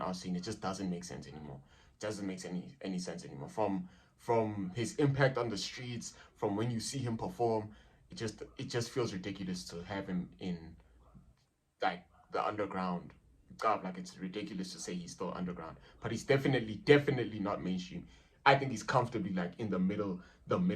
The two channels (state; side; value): identical; both; correlation 1.00